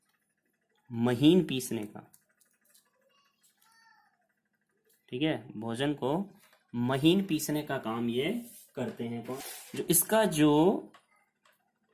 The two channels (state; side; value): identical; both; correlation 1.00